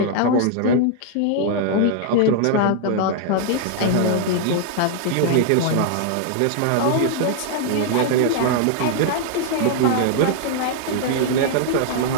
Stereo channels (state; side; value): different; both; correlation 0.00